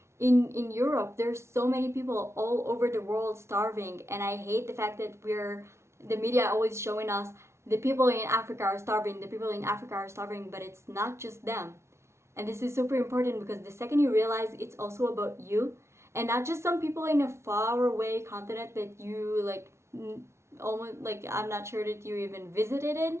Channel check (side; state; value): left; late; 0.13 ms